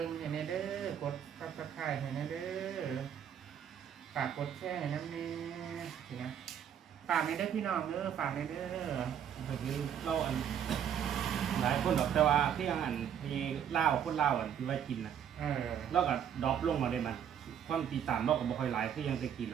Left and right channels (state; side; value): quieter; left; 8.9 dB